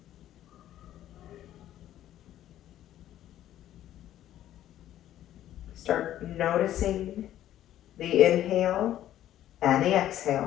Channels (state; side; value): quieter; right; 12.4 dB